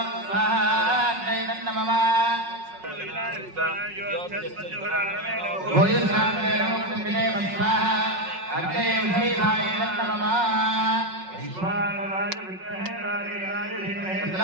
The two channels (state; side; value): late; left; 5.4 ms